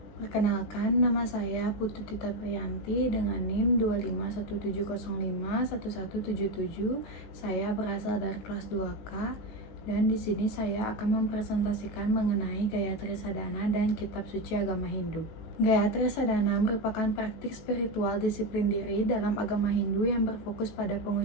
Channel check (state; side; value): late; right; 19 ms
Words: Perkenalkan, nama saya Putu Tita Priyanti dengan NIM 25170511177. Saya berasal dari kelas 2K dan di sini saya akan mempresentasikan mengenai Gayatri Sadhana dan Kitab Suci Agama Hindu. Gayatri Sadhana merupakan praktik spiritual disiplin diri dalam agama Hindu yang berfokus pada